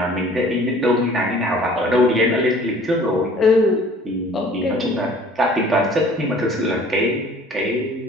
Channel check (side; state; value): both; normal; correlation 0.51